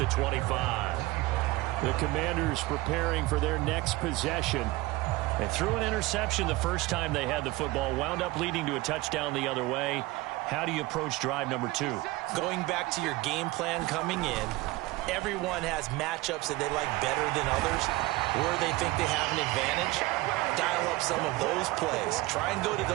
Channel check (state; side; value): quieter; left; 20.2 dB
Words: 25. The Commanders preparing for their next possession. They threw an interception the first time they had the football, wound up leading to a touchdown the other way. How do you approach drive number 2? Going back to your game plan coming in, everyone has matchups that they like better than others, where they think they have an advantage. Dial up some of those plays. Try and go to